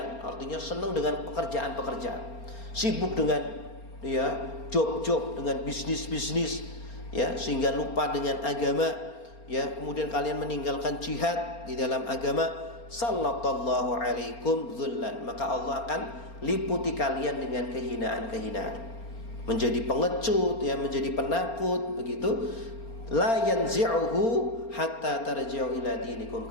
artinya senang dengan pekerjaan-pekerjaan, sibuk dengan, ya, job-job, dengan bisnis-bisnis, ya, sehingga lupa dengan agama, ya. Kemudian kalian meninggalkan jihad di dalam agama, sallallahu alaikum dzullan, maka Allah akan liputi kalian dengan kehinaan-kehinaan, menjadi pengecut, ya, menjadi penakut, begitu. La yanzi'uhu hatta tarji'u ila dinikum.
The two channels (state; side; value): late; right; 4.3 ms